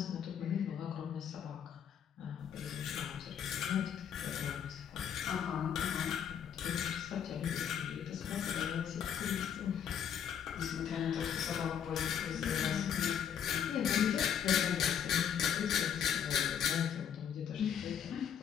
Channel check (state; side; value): quieter; right; 8.6 dB